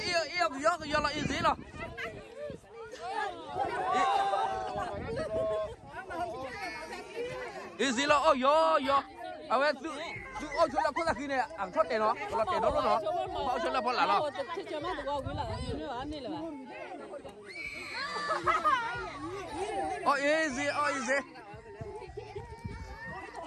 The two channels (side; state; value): both; identical; correlation 1.00